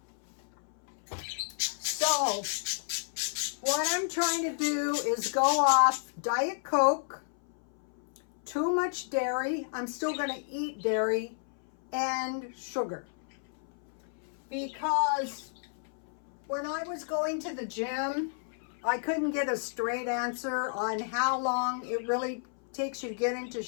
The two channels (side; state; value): right; silent; 57 dB below the other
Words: So, what I'm trying to do is go off Diet Coke, too much dairy. I'm still going to eat dairy, and sugar. Because when I was going to the gym, I couldn't get a straight answer on how long it really takes you to get into